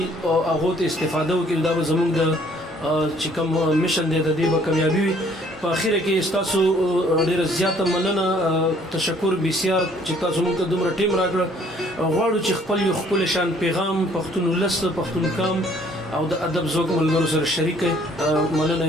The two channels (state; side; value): normal; both; correlation 0.60